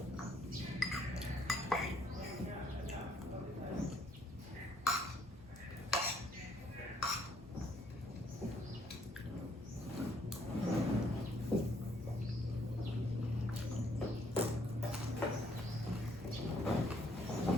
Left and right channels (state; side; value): normal; both; correlation 0.67